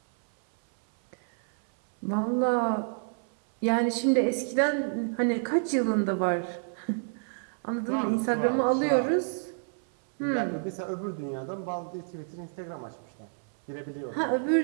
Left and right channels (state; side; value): silent; left; 59 dB below the other